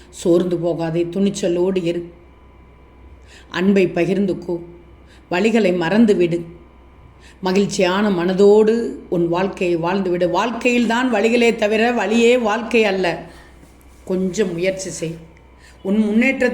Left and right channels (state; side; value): identical; both; correlation 1.00